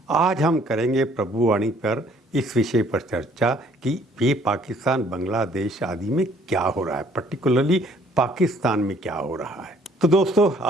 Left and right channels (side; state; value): both; normal; correlation 0.60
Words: आज हम करेंगे प्रभुवाणी पर इस विषय पर चर्चा कि ये पाकिस्तान बांग्लादेश आदि में क्या हो रहा है, पर्टिकुलरली पाकिस्तान में क्या हो रहा है। तो दोस्तों,